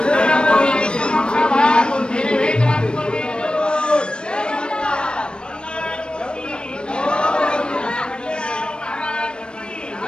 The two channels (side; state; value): right; late; 0.054 ms